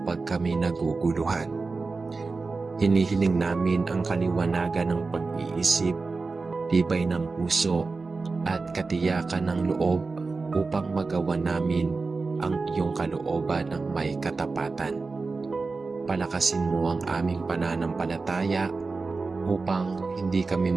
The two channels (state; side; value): quieter; left; 4.0 dB